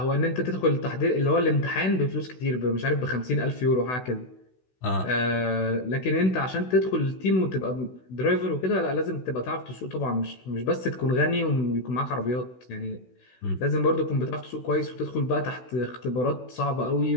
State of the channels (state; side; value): late; right; 16 ms